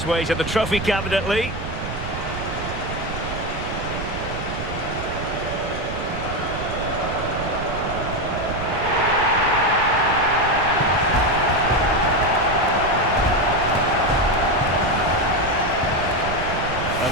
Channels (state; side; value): noise; right; rumble, 9 dB below the sound